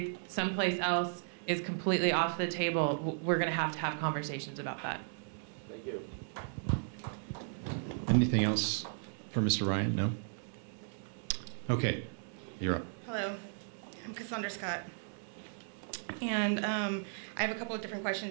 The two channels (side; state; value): left; silent; digital silence